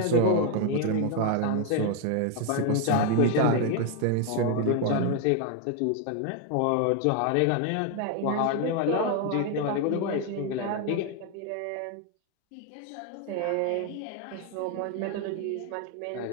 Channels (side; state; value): both; different; correlation 0.01